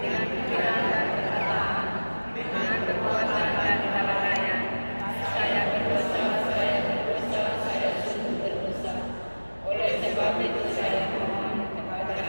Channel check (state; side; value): inverted; both; correlation -1.00